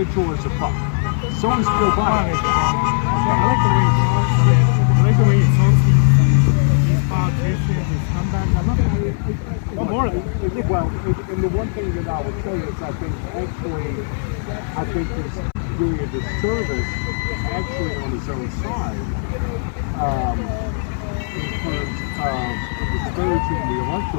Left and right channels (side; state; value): right; silent; 62 dB below the other